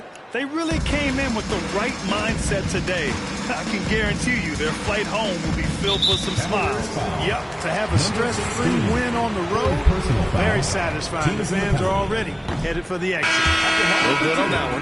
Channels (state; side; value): identical; both; correlation 1.00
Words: They really came in with the right mindset today. I can guarantee you their flight home will be filled with some smiles. Yep, to have a stress-free win on the road, very satisfying. The fans are already headed for the exit. No good on that